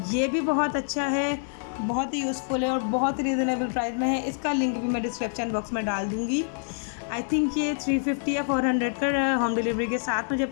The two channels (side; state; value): right; silent; 57 dB below the other